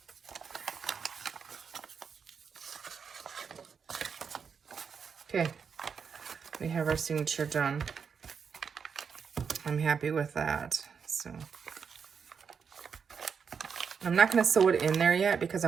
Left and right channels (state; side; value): quieter; left; 6.4 dB